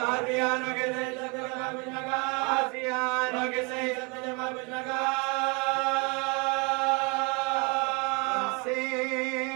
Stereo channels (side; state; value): left; quieter; 30.8 dB